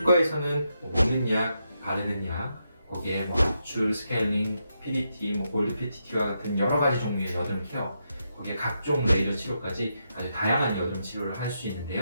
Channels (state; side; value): inverted; both; correlation -0.83